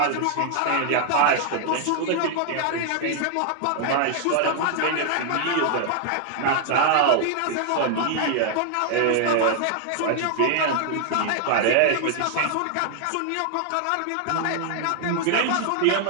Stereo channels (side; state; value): both; different; correlation 0.00